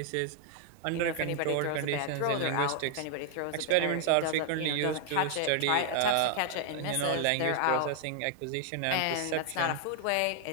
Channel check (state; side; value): different; both; correlation 0.00